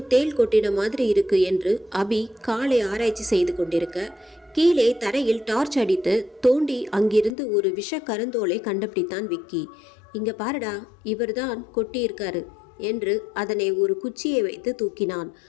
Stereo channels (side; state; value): right; drops out; at 7.4 s